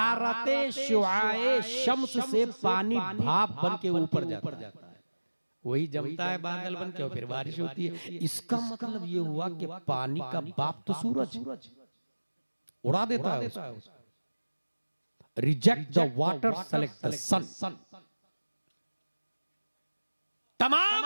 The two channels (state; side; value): inverted; both; correlation -1.00